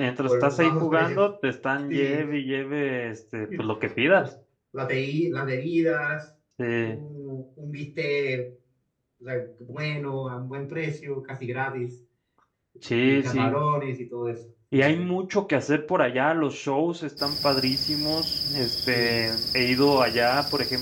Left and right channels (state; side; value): identical; both; correlation 1.00